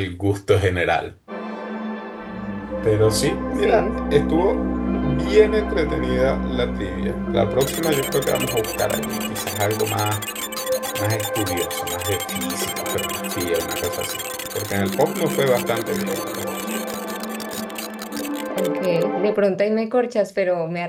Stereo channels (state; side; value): identical; both; correlation 1.00